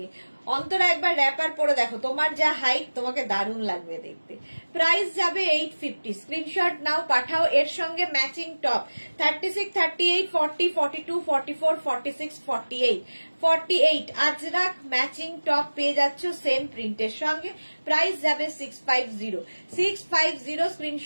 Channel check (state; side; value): inverted; both; correlation -1.00